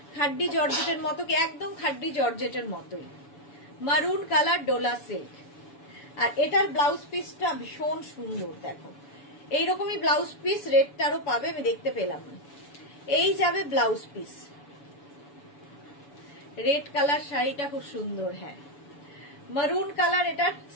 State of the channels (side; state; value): right; late; 7.0 ms